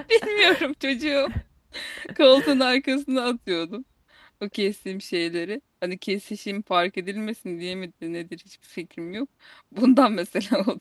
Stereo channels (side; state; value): both; identical; correlation 1.00